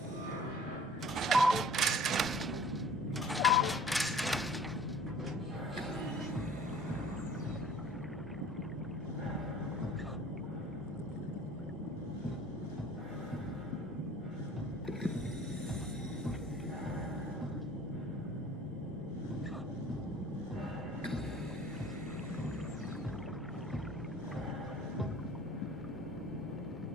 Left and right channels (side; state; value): both; normal; correlation 0.50